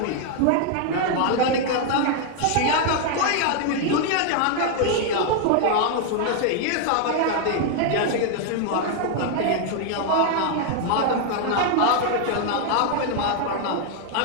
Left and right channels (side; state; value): both; different; correlation 0.00